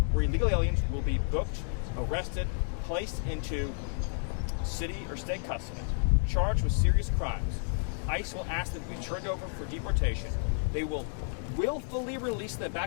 where illegal aliens will be booked, arrested, placed into city or state custody, charged with serious crimes. ICE will ask them to be turned over for deportation. They will willfully release them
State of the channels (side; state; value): right; silent; 55 dB below the other